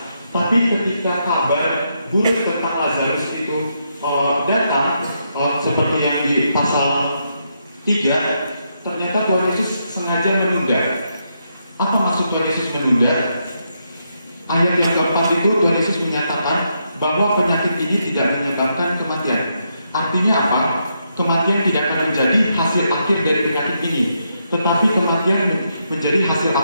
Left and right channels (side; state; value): both; inverted; correlation -0.80